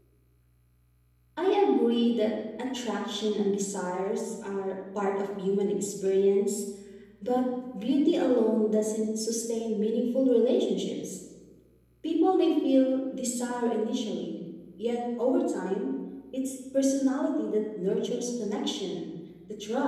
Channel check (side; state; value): both; identical; correlation 1.00